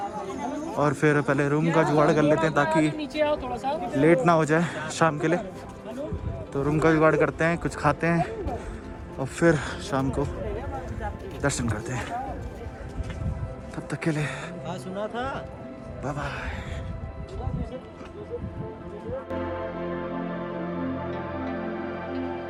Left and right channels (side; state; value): both; identical; correlation 1.00